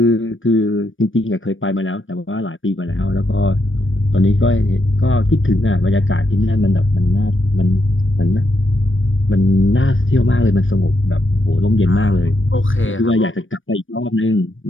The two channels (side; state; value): right; late; 0.57 ms